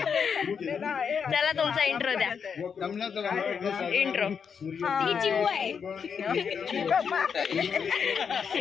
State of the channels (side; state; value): right; quieter; 6.6 dB